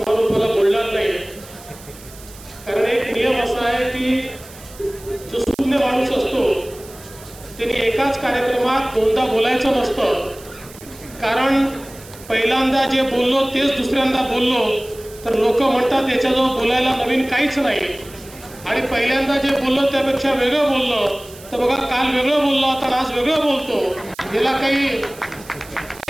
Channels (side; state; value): right; noise; hiss, 20 dB below the sound